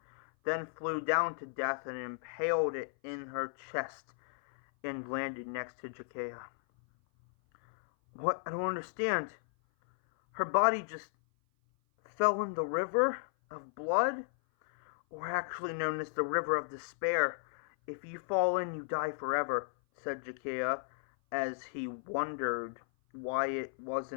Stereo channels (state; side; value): silent; right; 55 dB below the other